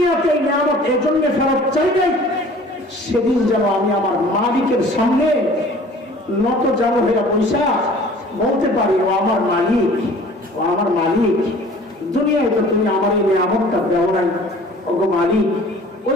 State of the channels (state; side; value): normal; both; correlation 0.48